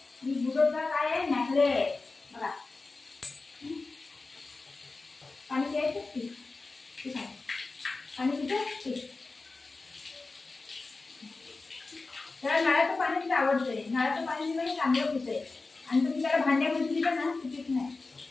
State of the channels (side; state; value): right; quieter; 3.7 dB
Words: मी बिजोडचा काय आहे नेकलेस बघा. पाणी प्यायचं ठीक आहे. पाणी पिते त्याला नळाचं पाणी आवडतंय. नळाचं पाणी म्हणजे चांगलं पितंय आणि तुम्ही त्याला भांड्यामध्ये दिलं ना पित नाही